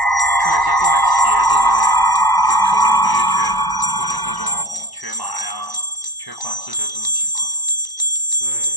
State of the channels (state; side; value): late; right; 1.0 ms